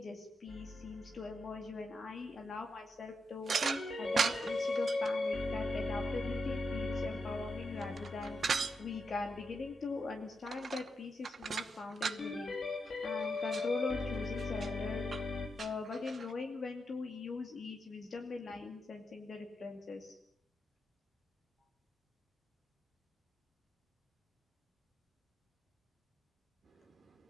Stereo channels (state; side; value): normal; both; correlation 0.84